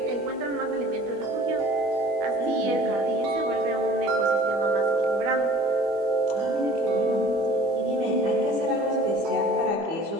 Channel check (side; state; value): left; late; 24 ms